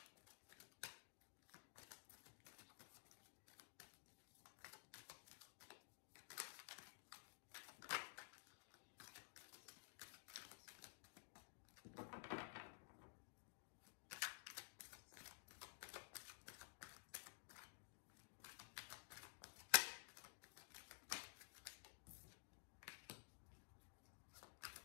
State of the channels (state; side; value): silent; right; digital silence